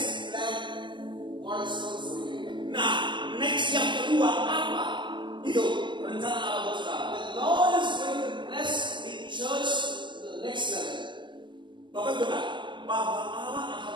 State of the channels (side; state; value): left; late; 0.23 ms